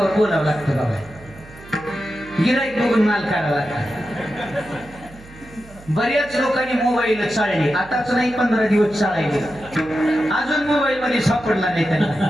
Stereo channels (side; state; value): right; noise; hum, 20 dB below the sound